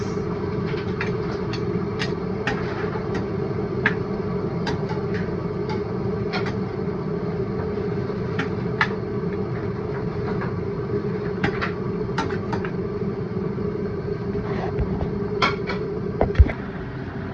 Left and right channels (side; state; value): both; identical; correlation 1.00